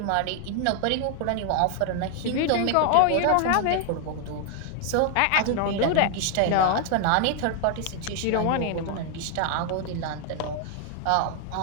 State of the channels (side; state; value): both; different; correlation 0.00